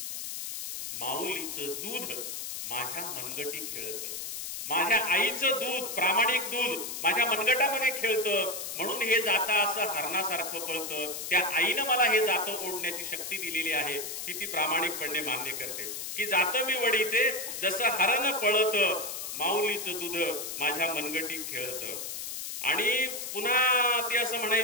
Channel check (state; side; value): noise; left; hiss, 6 dB below the sound